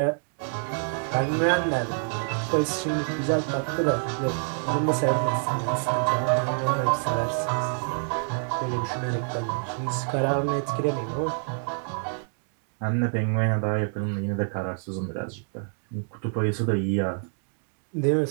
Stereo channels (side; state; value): left; silent; 56 dB below the other